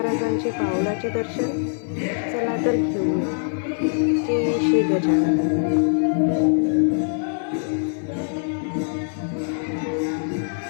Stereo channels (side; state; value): right; silent; 63 dB below the other